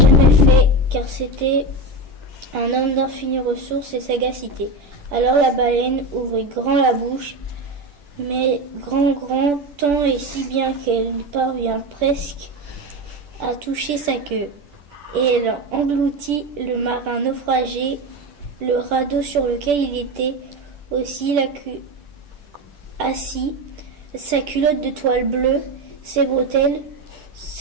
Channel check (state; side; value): late; left; 10 ms